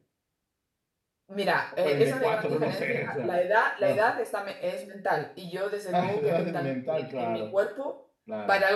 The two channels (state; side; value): identical; both; correlation 1.00